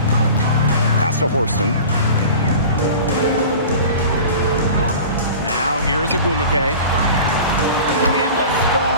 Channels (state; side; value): inverted; both; correlation -0.38